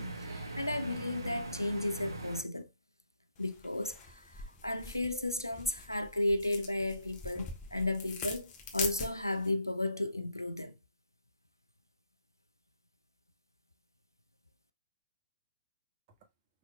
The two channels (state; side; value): inverted; both; correlation -0.77